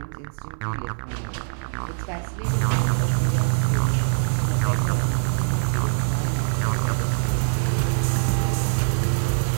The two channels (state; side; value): silent; left; 58 dB below the other